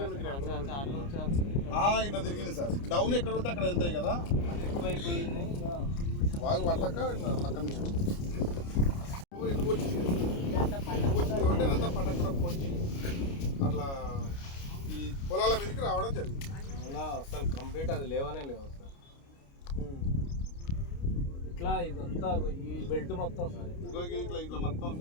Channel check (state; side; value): late; right; 29 ms